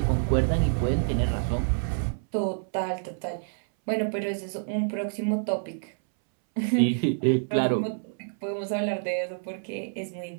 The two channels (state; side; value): silent; left; 60 dB below the other